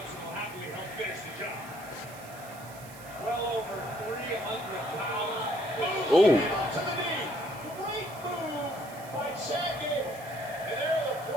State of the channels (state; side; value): noise; right; hiss, 18 dB below the sound